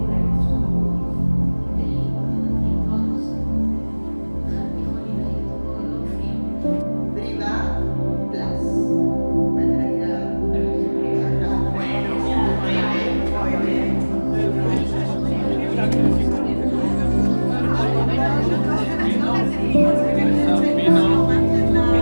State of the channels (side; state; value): both; inverted; correlation -1.00